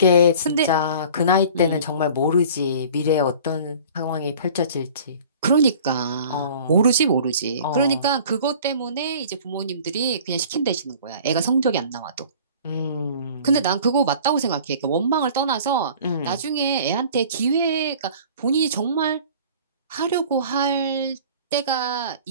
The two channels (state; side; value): inverted; both; correlation -0.46